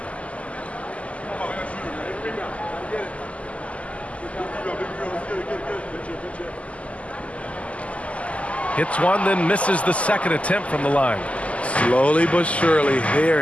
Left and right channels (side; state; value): right; late; 0.065 ms